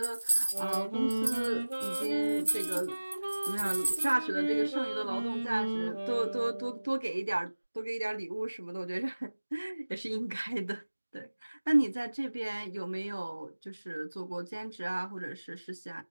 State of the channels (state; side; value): inverted; both; correlation -1.00